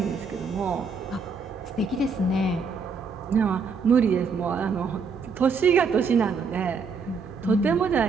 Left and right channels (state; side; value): quieter; left; 4.9 dB